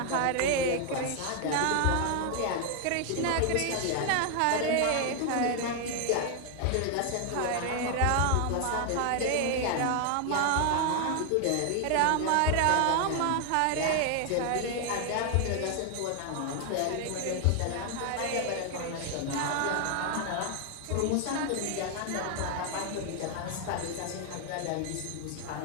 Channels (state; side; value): different; both; correlation 0.00